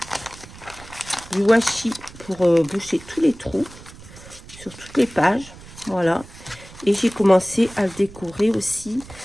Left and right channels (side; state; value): right; noise; rumble, 19 dB below the sound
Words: du washi pour boucher tous les trous sur toutes les pages. Voilà. Et j'ai commencé à le décorer aussi